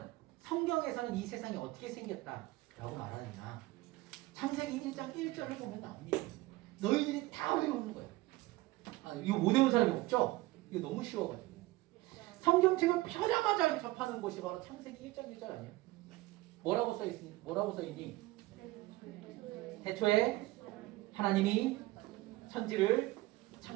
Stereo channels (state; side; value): quieter; left; 19.4 dB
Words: 성경에서는 이 세상이 어떻게 생겼다라고 말하느냐. 창세기 1장 1절을 보면 나옵니다. 너희들이 다 외우는 거야. 이거 못 외우는 사람이 없죠? 이거 너무 쉬워가지고. 성경책을 펴자마자 접하는 곳이 바로 창세기 1장 1절 아니에요? 뭐라고 써있니? 태초에 하나님이 천지를